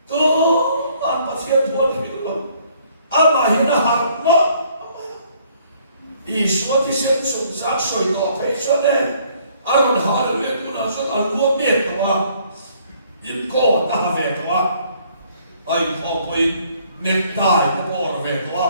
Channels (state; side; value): inverted; both; correlation -0.63